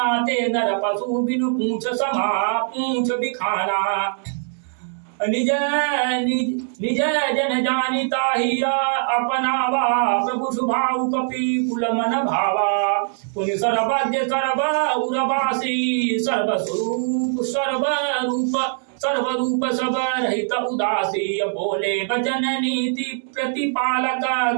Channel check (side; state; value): left; silent; digital silence